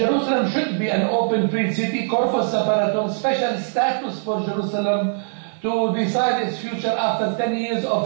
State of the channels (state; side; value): silent; left; 65 dB below the other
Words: should be an open free city, corpus separatum, special status for Jerusalem to decide its future after 10 years